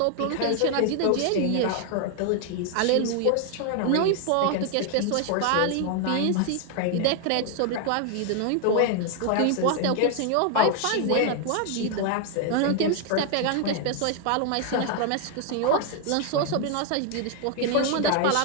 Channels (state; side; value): different; both; correlation 0.00